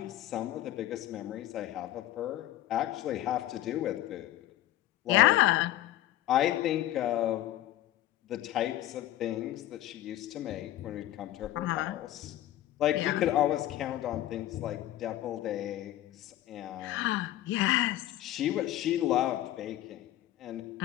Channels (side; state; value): right; quieter; 14.2 dB